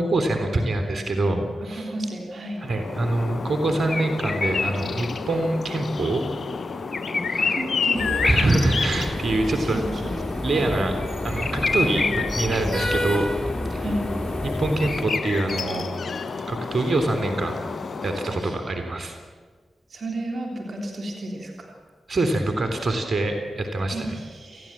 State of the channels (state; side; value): normal; both; correlation 0.88